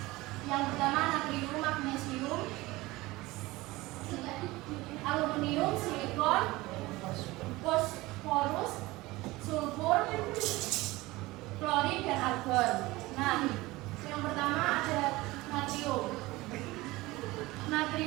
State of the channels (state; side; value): quieter; left; 20.1 dB